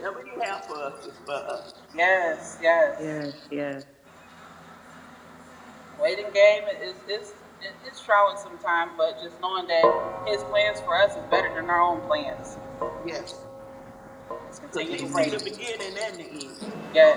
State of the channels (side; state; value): both; identical; correlation 1.00